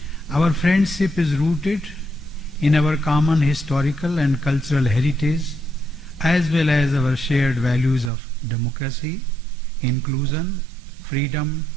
Our friendship is rooted in our common historical and cultural heritage, as well as our shared values of democracy, inclusion, freedom,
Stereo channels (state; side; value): drops out; left; at 8.1 s